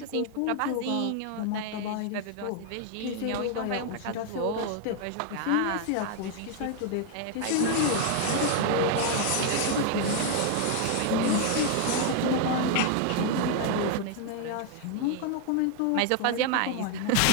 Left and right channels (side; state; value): both; different; correlation 0.00